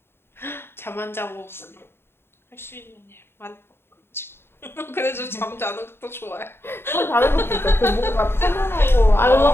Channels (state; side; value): late; right; 0.11 ms